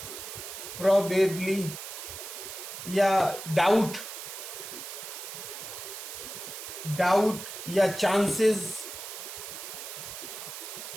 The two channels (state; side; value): noise; right; hiss, 9 dB below the sound